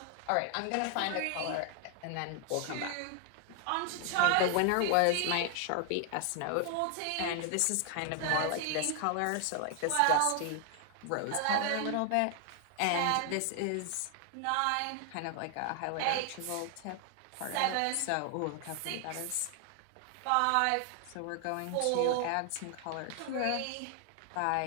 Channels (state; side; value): different; both; correlation 0.00